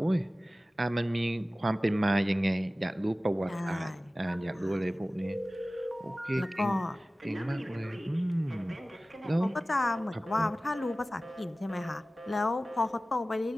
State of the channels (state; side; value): normal; both; correlation 0.97